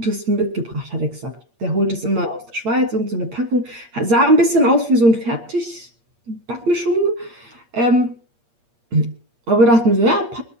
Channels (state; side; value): late; left; 8.5 ms